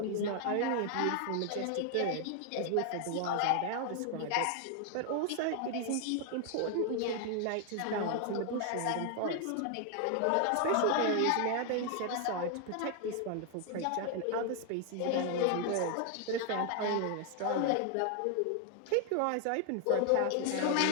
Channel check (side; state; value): both; different; correlation 0.00